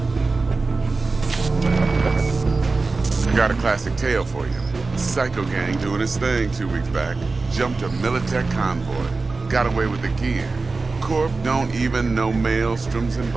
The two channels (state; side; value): quieter; left; 3.9 dB